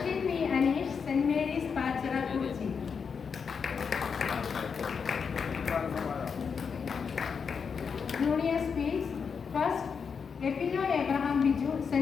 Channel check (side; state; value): right; quieter; 6.1 dB